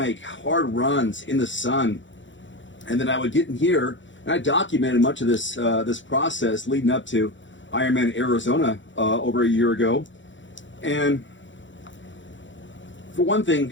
hard runs in the sun. And then I would get in here, and I documented much of this process leading up to Ironman Arizona over a year ago. And for one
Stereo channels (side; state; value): right; late; 0.55 ms